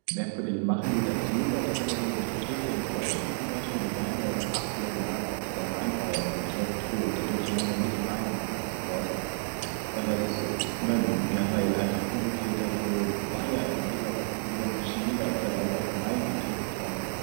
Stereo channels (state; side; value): silent; left; digital silence